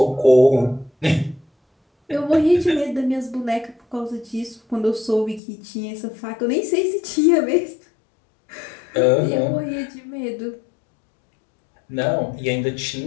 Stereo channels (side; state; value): right; drops out; at 5.4 s